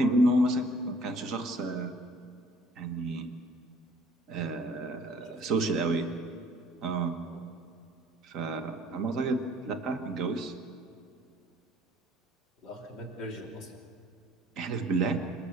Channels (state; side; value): normal; both; correlation 0.56